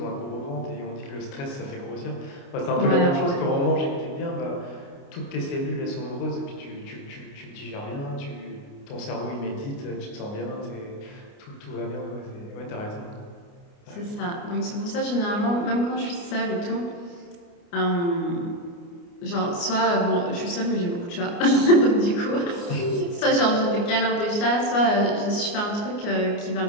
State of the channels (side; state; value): right; late; 29 ms